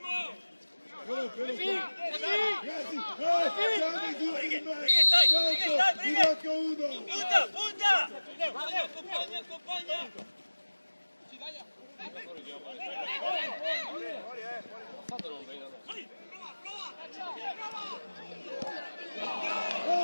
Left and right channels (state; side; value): inverted; both; correlation -1.00